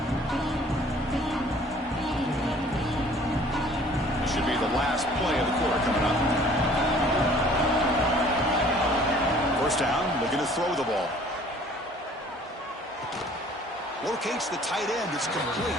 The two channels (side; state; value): both; normal; correlation 0.53